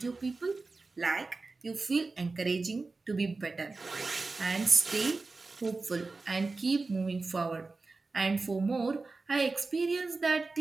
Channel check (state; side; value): quieter; left; 3.7 dB